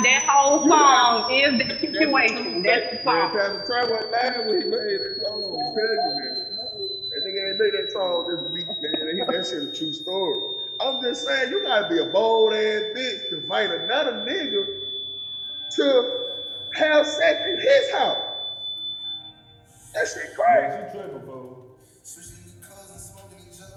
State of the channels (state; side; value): identical; both; correlation 1.00